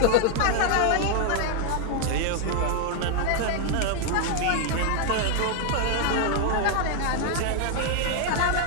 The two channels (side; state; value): both; different; correlation 0.00